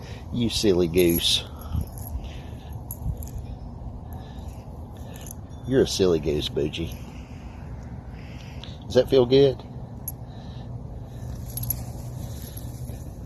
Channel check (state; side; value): identical; both; correlation 1.00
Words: You silly goose. You're a silly goose, Boogee. Does that feel good?